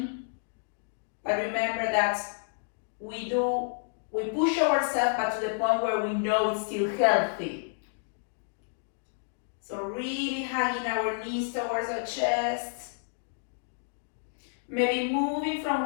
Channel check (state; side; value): silent; right; digital silence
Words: but remember that we push ourselves, but to the point where we know it's still healthy. So really hugging our knees towards our chest, maybe moving from